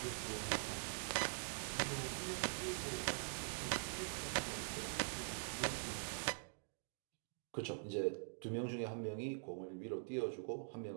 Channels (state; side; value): silent; left; digital silence